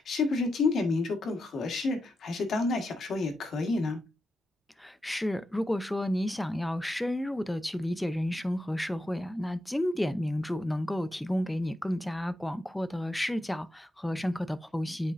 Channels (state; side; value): normal; both; correlation 0.87